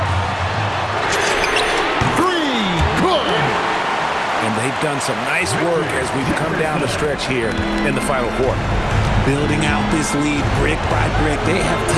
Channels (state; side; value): identical; both; correlation 1.00